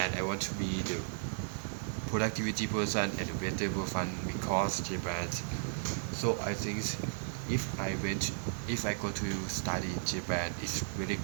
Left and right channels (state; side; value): silent; left; digital silence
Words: I want to be the productivity person and the better person because Japan. So I think if I go to study in Japan, it's really